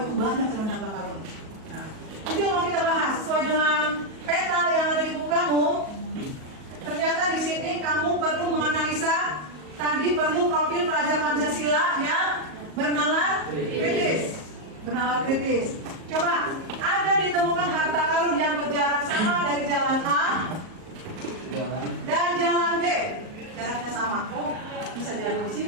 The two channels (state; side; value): late; left; 38 ms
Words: itu banyak sebenarnya harta karun. Nah, itu yang mau kita bahas sesuai dengan peta yang ada di buku kamu. Ternyata di sini kamu perlu menganalisa, tadi perlu profil pelajar Pancasila yang bernalar kritis. Bernalar kritis. Coba, ada ditemukan harta karun yang berjarak sama dari jalan A dan jalan B. Jaraknya sama. Oh, bisa jadi di